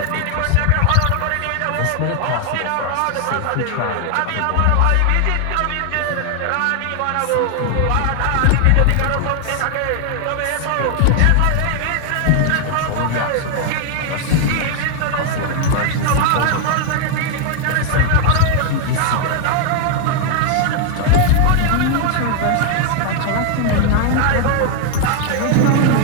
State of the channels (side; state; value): both; different; correlation 0.00